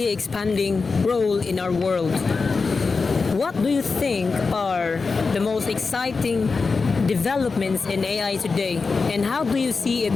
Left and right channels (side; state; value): right; quieter; 4.5 dB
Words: expanding role in our world. What do you think are the most exciting developments in AI today, and how do you see